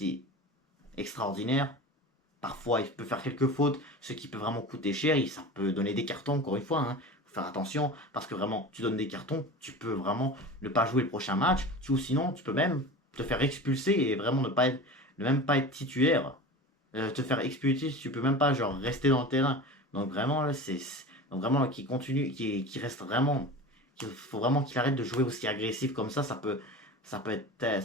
extraordinaire. Parfois, il peut faire quelques fautes, ce qui peut vraiment coûter cher. Et ça peut donner des cartons, encore une fois. Hein. Faut faire attention, parce que vraiment, tu donnes des cartons, tu peux vraiment ne pas jouer le prochain match. Ou sinon, tu peux même te faire expulser et vraiment ne même pas être titulaire. Te faire expulser, tu peux même pas genre rester dans le terrain. Donc vraiment, là, donc vraiment là, qui continue, qui reste vraiment. Il faut vraiment qu'il arrête de jouer aussi agressif comme ça peut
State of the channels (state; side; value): normal; both; correlation 0.33